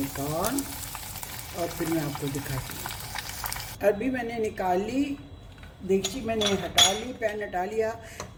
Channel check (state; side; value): identical; both; correlation 1.00